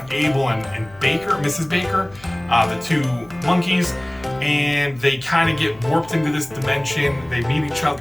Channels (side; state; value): left; noise; hum, 24 dB below the sound